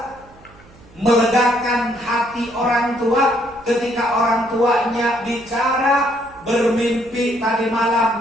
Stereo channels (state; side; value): noise; right; hum, 26 dB below the sound